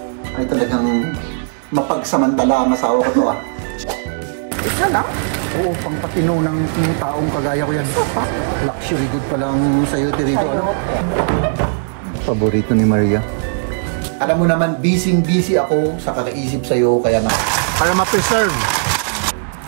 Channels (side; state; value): left; silent; digital silence